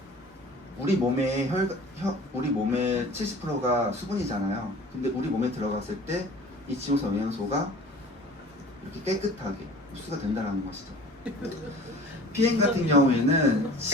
우리 몸의 우리 몸의 70%가 수분이잖아요. 근데 우리 몸에 들어갔을 때 이 지용성 영양소가 이렇게 깨끗하게 흡수가 된다는 것이죠. PM 같은 경우에는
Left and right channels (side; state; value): both; normal; correlation 0.44